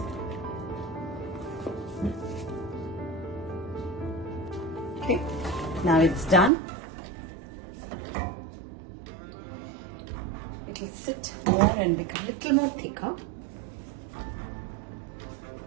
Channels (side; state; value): left; drops out; at 6.5 s